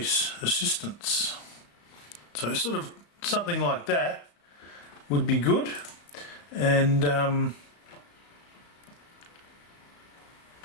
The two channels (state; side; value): late; right; 35 ms